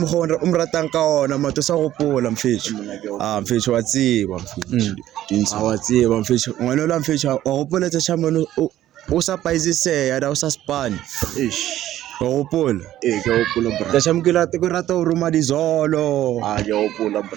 umratang ka ona mato sagopola mfethu mfethu wa tsiba mfethu dintsha wa tsiba mfethu ngwana la mfethu wa gopola tsa chamano usapaizise da usaspani gopola ke gopola bra ka shamkela te ko rata o roma dizolo ke gopola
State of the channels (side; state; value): left; quieter; 13.2 dB